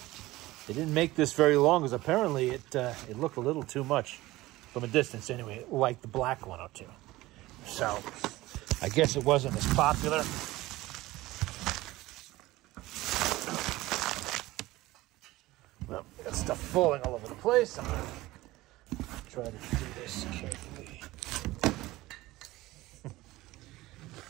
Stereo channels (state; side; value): quieter; left; 18.3 dB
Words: They didn't make this very long because apparently it looked a little too much from a distance anyway, like the black 102. So I guess it wasn't as popular. Well, got stuff falling all over the place. I'm going to try to do this carefully.